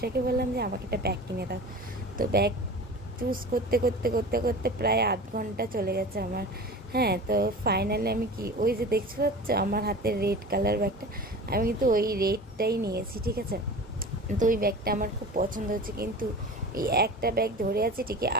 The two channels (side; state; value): both; normal; correlation 0.36